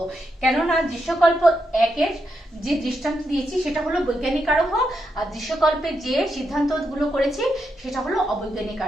কেননা দৃশ্যকল্প 1 এর যে দৃষ্টান্ত দিয়েছি সেটা হলো বৈজ্ঞানিক আরোহ, আর দৃশ্যকল্পে যে সিদ্ধান্তগুলো করেছি সেটা হলো অবৈজ্ঞানিক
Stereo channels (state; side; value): normal; both; correlation 0.83